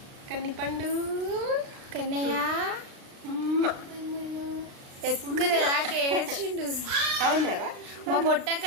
కన్నిపండు కన్నయ్య ఎత్తుకునేదాకా ఏడ్చిండు. అవునారా? మా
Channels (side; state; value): left; late; 36 ms